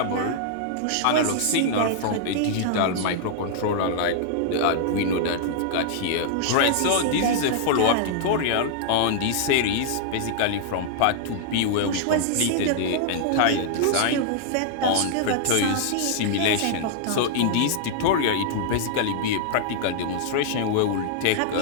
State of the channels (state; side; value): different; both; correlation -0.01